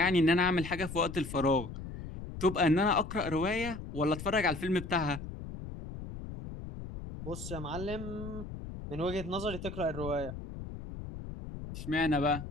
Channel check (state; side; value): noise; left; rumble, 10 dB below the sound